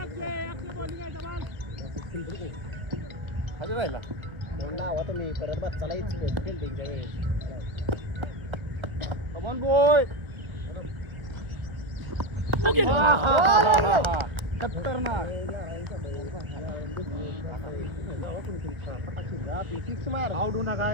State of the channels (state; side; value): late; left; 1.2 ms